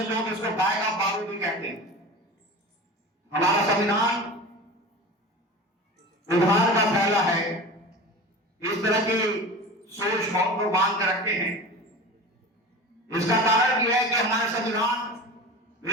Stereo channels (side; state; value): both; normal; correlation 0.32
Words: लोग इसको गाय का बारूद भी कहते हैं। हमारा संविधान उधार का फैला है, इस तरह की सोच बहुत लोग बांध कर रखते हैं। इसका कारण यह है कि हमारे संविधान